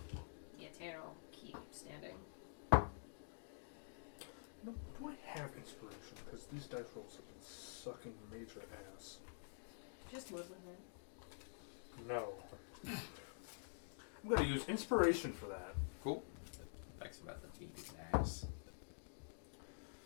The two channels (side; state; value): right; silent; digital silence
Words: Yeah, Tanner will keep standing. No, do I have inspiration? Because these dice rolls have been sucking major ass. Just live with it. No. I'm going to use inspiration for that. Cool. Thanks about the beat his ass.